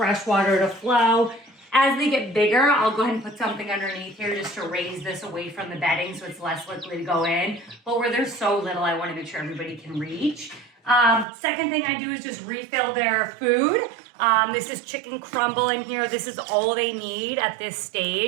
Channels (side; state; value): left; drops out; at 11.2 s